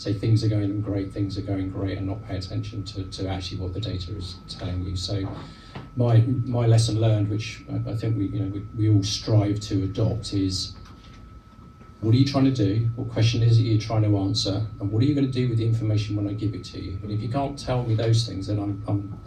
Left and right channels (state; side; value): identical; both; correlation 1.00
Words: things are going great, and not pay attention to actually what the data is telling you. So my lesson learned, which I think we all strive to adopt, is what are you trying to do? What question is it you're trying to answer? And what are you going to do with the information when I give it to you? And if you can't tell me those things, then I'm